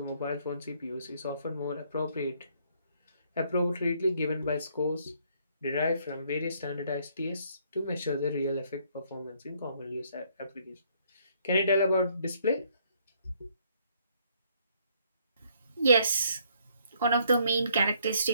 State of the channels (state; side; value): inverted; both; correlation -0.67